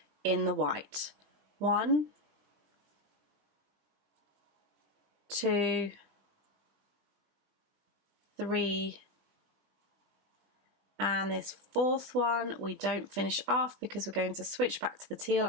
in the white. 1, 2, 3, and this 4th one we don't finish off because we're going to switch back to the teal.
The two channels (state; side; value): late; left; 20 ms